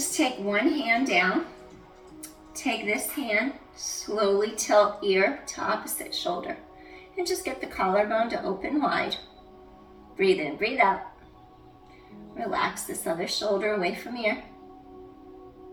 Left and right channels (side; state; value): both; identical; correlation 1.00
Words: take one hand down, take this hand, slowly tilt ear to opposite shoulder and just get the collarbone to open wide. Breathe in, breathe out. Relax this other shoulder away from ear.